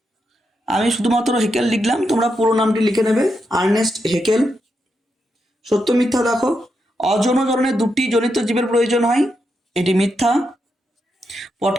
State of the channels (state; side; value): normal; both; correlation 0.84